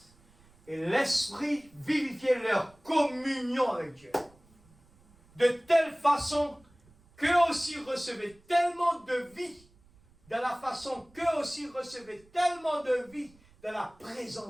Et l'Esprit vivifiait leur communion avec Dieu. De telle façon qu'eux aussi recevaient tellement de vie, de la façon qu'eux aussi recevaient tellement de vie dans la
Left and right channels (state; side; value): noise; right; rumble, 29 dB below the sound